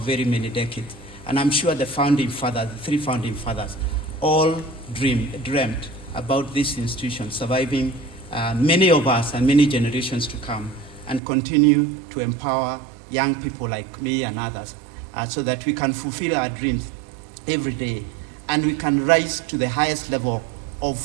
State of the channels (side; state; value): left; drops out; at 11.2 s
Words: many decades, and I'm sure the founding fathers, the three founding fathers, all dreamt about this institution surviving many of us and many generations to come, and continue to empower young people like me and others so that we can fulfill our dreams every day, and we can rise to the highest level